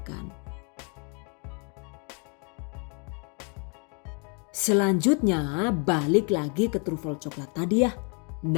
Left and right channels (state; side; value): quieter; right; 36.2 dB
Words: Selanjutnya balik lagi ke trufel coklat tadi ya.